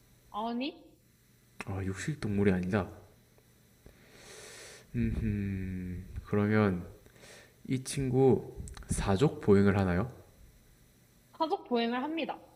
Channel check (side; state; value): both; identical; correlation 1.00